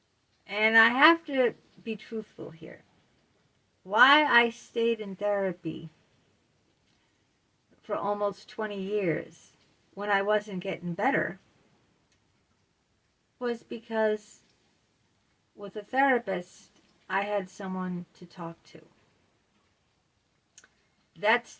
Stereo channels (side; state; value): both; identical; correlation 1.00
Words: And I have to be truthful here. Why I stayed in therapy for almost 20 years when I wasn't getting better was because with a therapist, I had someone to talk to. That's